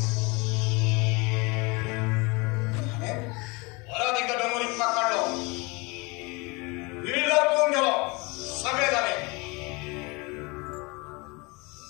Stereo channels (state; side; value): quieter; right; 27.0 dB